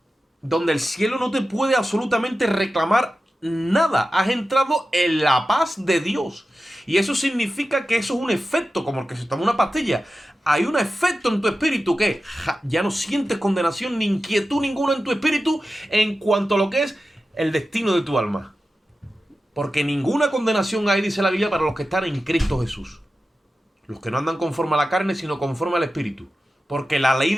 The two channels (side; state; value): both; normal; correlation 0.93